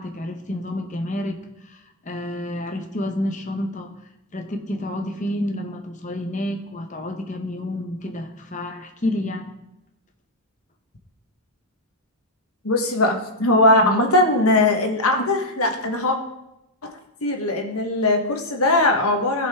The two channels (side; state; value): both; normal; correlation 0.01